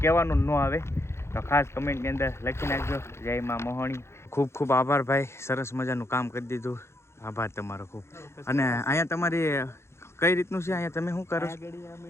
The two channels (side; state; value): right; late; 0.13 ms